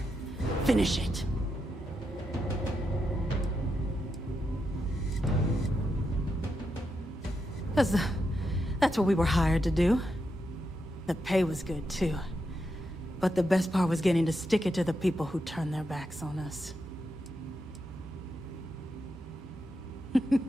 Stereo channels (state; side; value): normal; both; correlation 0.84